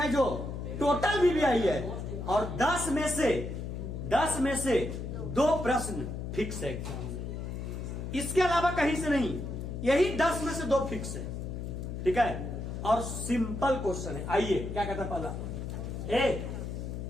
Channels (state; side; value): noise; left; hum, 6 dB below the sound